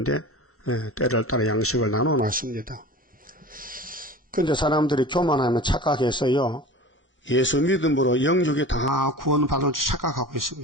때를 따라 양식을 나눠놨습니다. 근데 사람들이 교만하면 착각해서요. 예수 믿음으로 영육이 다 구원받을 줄 착각하고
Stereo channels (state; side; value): normal; both; correlation 0.36